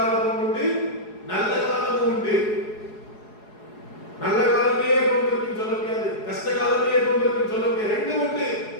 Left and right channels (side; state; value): right; late; 4.8 ms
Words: உண்டு, நல்ல காலமும் உண்டு. நல்ல காலமே கொண்டிருக்கும் சொல்ல முடியாது, கஷ்ட காலமே கொண்டிருக்கும் சொல்ல முடியாது. ரெண்டும் உண்டு.